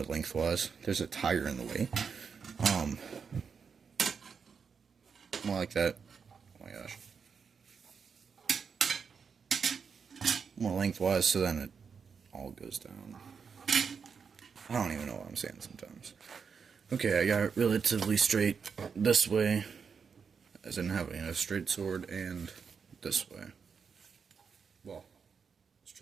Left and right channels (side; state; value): left; quieter; 6.1 dB